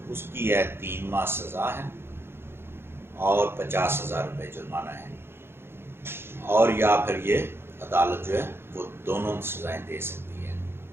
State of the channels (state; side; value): late; left; 0.11 ms